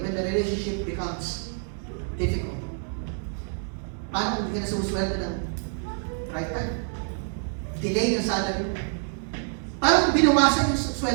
when the relationship becomes difficult. Paano kung hindi ka na sumusweldo ng right time? Delay ng salary mo. Paano kung binawasan yung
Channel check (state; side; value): silent; left; 60 dB below the other